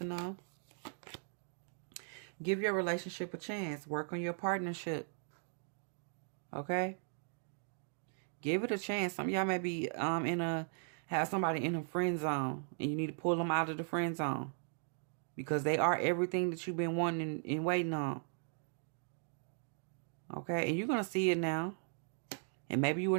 know? Give your relationship a chance. Work on your partnership. Okay? Give it a chance. Some of y'all may be have somebody in a friend zone, and you need to pull them out of the friend zone because they are everything that you've been wanting and waiting on. Okay? And you're going to see it now. And maybe you were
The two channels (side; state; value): left; silent; 52 dB below the other